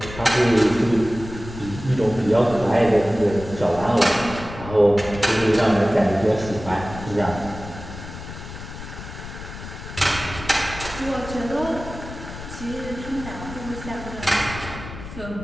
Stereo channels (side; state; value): left; noise; rumble, 12 dB below the sound